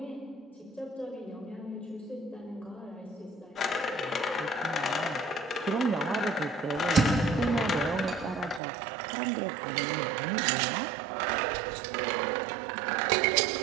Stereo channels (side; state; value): left; drops out; at 8.6 s